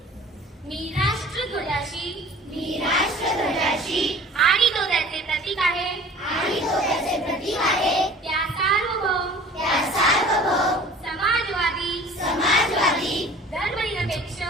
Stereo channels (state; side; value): normal; both; correlation 0.45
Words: मी राष्ट्रध्वजाशी आणि तो त्याचे प्रतीक आहे त्या सार्वभौम समाजवादी धर्मनिरपेक्ष